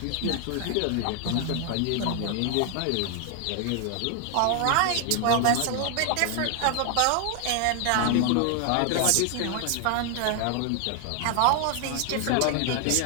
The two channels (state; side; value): different; both; correlation 0.00